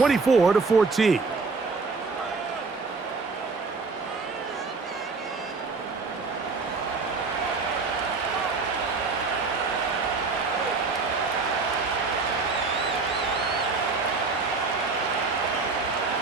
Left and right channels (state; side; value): quieter; left; 4.3 dB